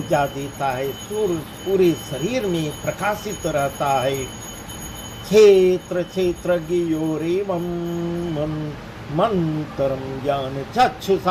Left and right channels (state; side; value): identical; both; correlation 1.00